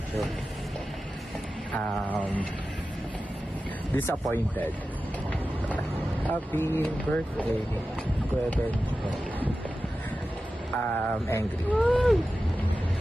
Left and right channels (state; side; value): normal; both; correlation 0.93